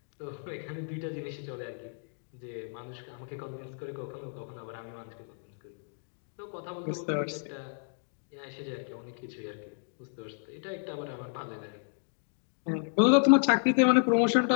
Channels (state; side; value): silent; right; 57 dB below the other